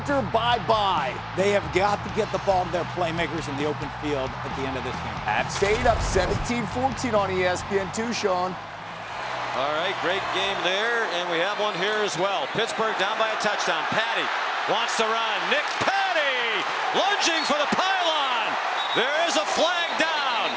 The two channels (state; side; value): identical; both; correlation 1.00